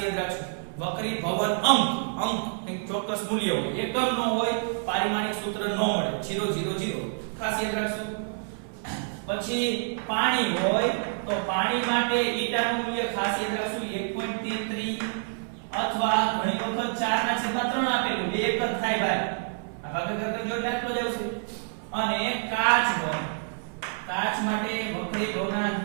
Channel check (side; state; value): left; silent; 60 dB below the other